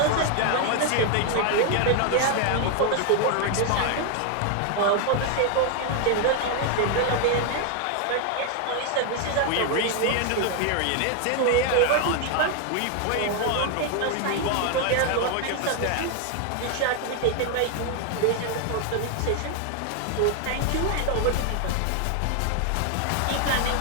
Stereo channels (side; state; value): both; different; correlation 0.00